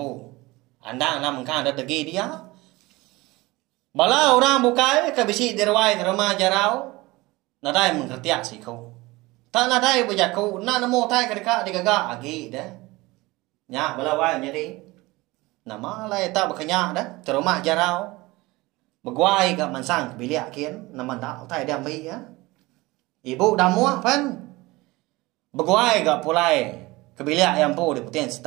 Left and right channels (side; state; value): left; quieter; 21.3 dB